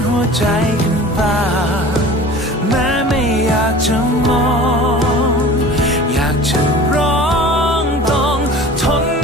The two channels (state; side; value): normal; both; correlation 0.41